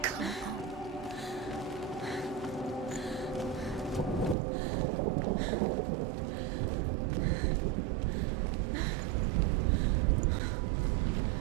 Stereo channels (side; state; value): left; drops out; at 4.4 s